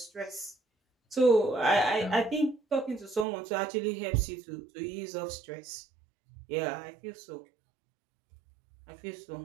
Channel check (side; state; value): left; drops out; at 3.2 s